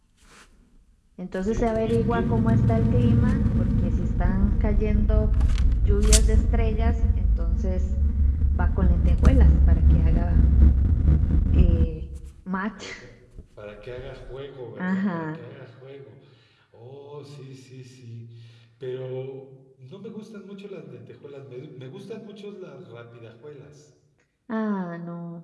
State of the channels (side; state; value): both; identical; correlation 1.00